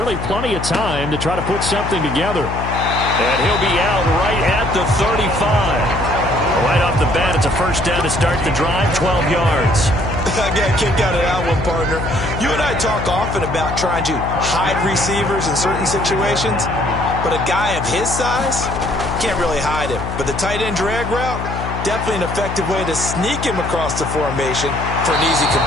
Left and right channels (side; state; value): left; noise; hum, 6 dB below the sound